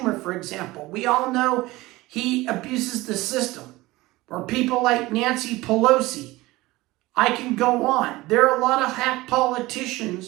for example. We all know he abuses the system. Or people like Nancy Pelosi. I can go on. There are a lot of hack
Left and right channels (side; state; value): left; quieter; 19.6 dB